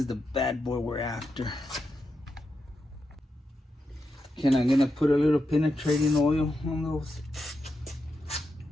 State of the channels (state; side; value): normal; both; correlation 0.87